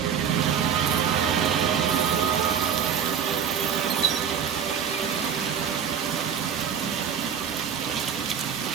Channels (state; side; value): quieter; left; 7.7 dB